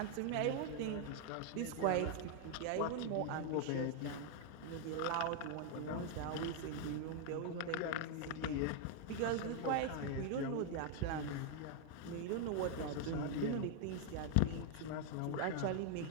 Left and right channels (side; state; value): both; different; correlation 0.00